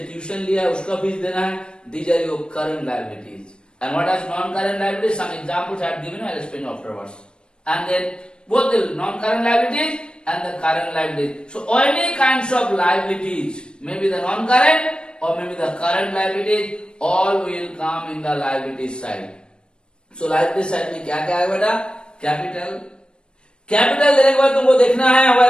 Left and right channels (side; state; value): right; late; 0.053 ms